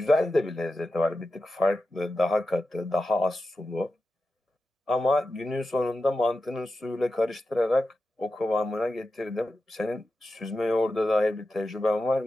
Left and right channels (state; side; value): normal; both; correlation 0.91